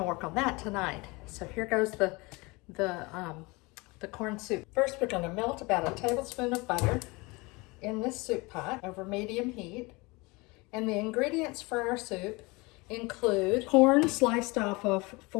work on that tonight. So here goes the corn soup. First, we're going to melt about a tablespoon of butter in this soup pot over medium heat. And the ingredients for our soup include corn sliced off of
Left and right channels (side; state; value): right; quieter; 25.2 dB